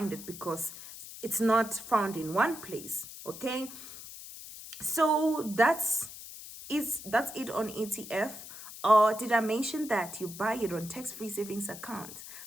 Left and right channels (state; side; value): noise; left; hiss, 13 dB below the sound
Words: it because it's not found in one place. Okay, so that's it on ETF. Or did I mention that you buy it on tax-free savings account?